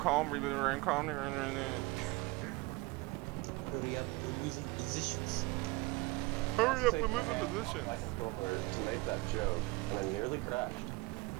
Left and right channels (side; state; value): left; quieter; 23.2 dB